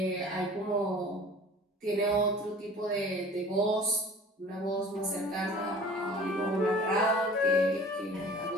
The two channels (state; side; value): normal; both; correlation 0.45